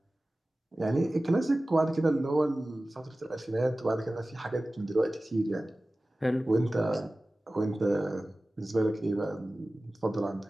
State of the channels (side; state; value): both; normal; correlation 0.97